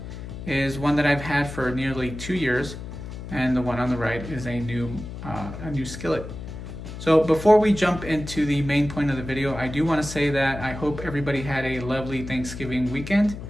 is one that I've had for nearly 2 years, and the one on the right is a new skillet. So before we jump into the main point of the video, I do want to say that I hope everybody had a lovely Thanksgiving weekend,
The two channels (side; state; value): left; noise; hum, 10 dB below the sound